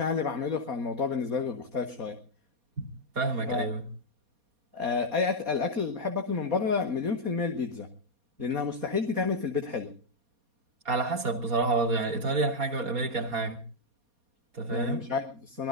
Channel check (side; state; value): left; late; 4.2 ms